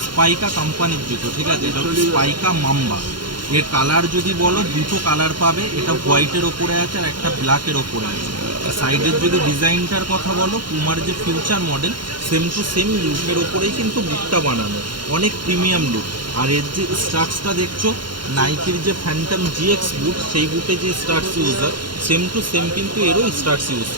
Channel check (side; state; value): left; late; 0.72 ms